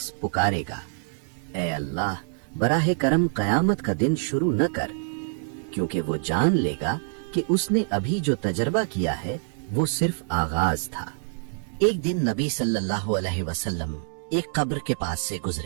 पुकारेगा, ऐ अल्लाह, बराहे करम कयामत का दिन शुरू न कर, क्योंकि वो जान लेगा कि उसने अभी जो तजर्बा किया है वो सिर्फ आगाज था। एक दिन नबी सल्लल्लाहु अलैहि वसल्लम एक कब्र के पास से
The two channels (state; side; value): silent; left; digital silence